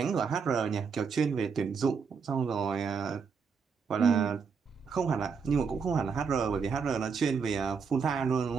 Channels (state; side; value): quieter; left; 5.8 dB